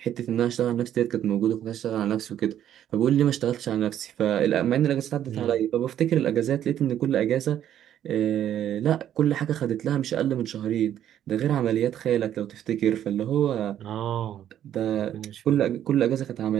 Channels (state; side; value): quieter; left; 10.8 dB